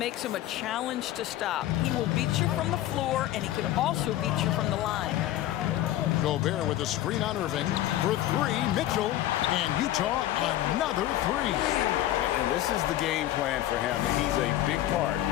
him a challenge to stop. He will beat you from the floor, and he can also beat you from the line. Gobert with a screen on Irving. For 3, Mitchell. And Utah, another 3. And this is the game plan for him. He's a big part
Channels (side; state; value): right; quieter; 13.8 dB